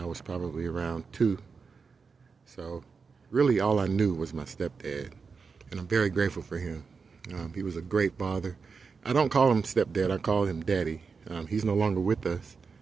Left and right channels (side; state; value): left; quieter; 5.1 dB